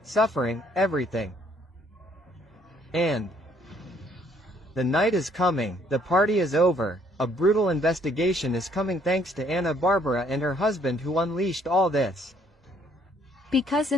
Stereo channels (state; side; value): normal; both; correlation 0.65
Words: suffering, everything. And the night is coming, the party is over, a brutal investigation is coming thanks to Ana Bárbara and her husband who unleashed all this. Because